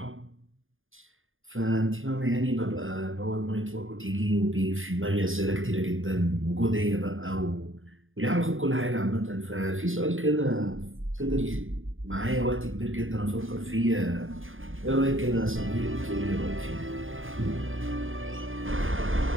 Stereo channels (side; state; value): left; late; 0.59 ms